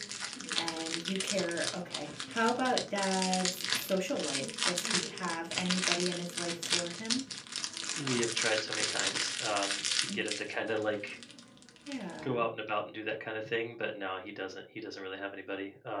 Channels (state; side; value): identical; both; correlation 1.00